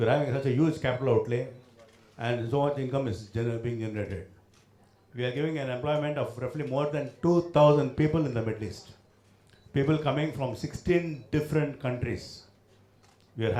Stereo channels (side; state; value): both; identical; correlation 1.00